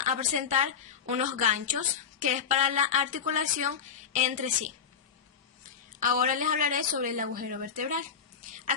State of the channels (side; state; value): right; quieter; 6.9 dB